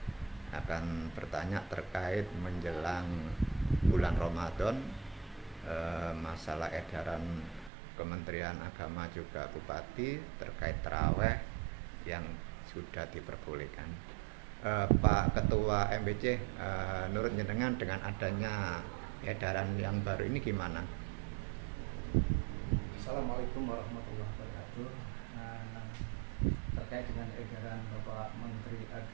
akan bertanya terkait menjelang bulan Ramadan, masalah edaran Kementerian Agama juga Bupati terkait taraweh yang sudah diperbolehkan. Pak Ketua MBC, menurut jenengan dengan adanya edaran yang baru ini gimana? Assalamualaikum warahmatullahi wabarakatuh. Terkait dengan edaran Bapak Menteri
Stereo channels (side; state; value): left; drops out; at 7.7 s